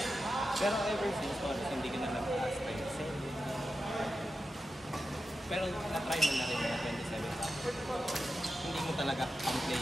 Pero ever since, Morris, hindi ka na nag-last time. Pero na-try mo na rin mga 27 hours. Hindi mo talaga ang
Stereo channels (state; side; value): normal; both; correlation 0.90